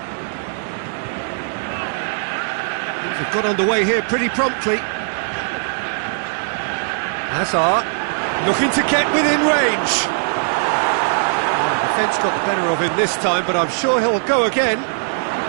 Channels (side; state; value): left; silent; digital silence